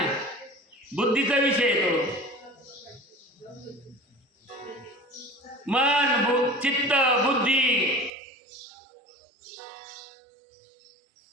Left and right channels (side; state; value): left; drops out; at 8.1 s